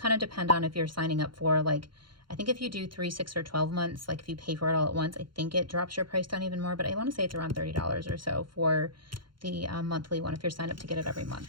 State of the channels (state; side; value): late; left; 0.73 ms